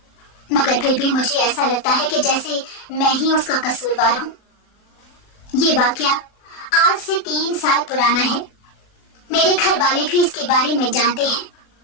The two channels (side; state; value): right; late; 40 ms